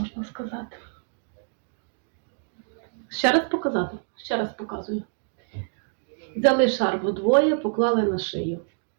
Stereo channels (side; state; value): left; silent; digital silence